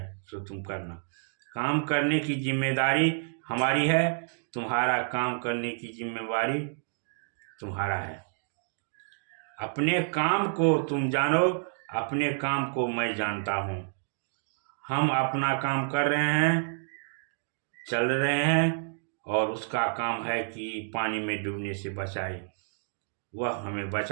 सो तुम करना। काम करने की जिम्मेदारी हमारी है, तुम्हारा काम करने की जिम्मेदारी तुम्हारा है। अपने काम को तुम जानो, अपने काम को मैं जानता हूँ। हम अपना काम कर रहे हैं, चल रहे हैं, और उसका काम है कि पानी में डूबने से बचाए। वह हमें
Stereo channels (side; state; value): left; silent; digital silence